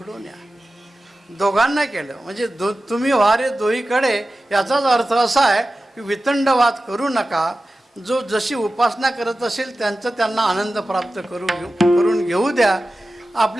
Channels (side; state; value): both; normal; correlation 0.94